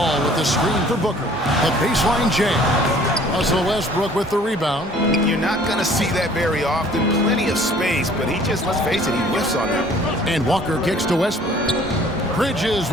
with the screen for Booker. A baseline jam. Russell Westbrook with the rebound. You're not going to see that very often. Plenty of space, but he just, let's face it, he whiffs on that one. And Walker kicks to Westbrook. Bridges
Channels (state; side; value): normal; both; correlation 0.54